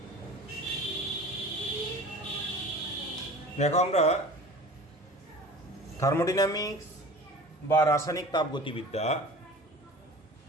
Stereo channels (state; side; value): normal; both; correlation 0.40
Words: দেখো, আমরা থার্মোডাইনামিক্স বা রাসায়নিক তাপগতিবিদ্যা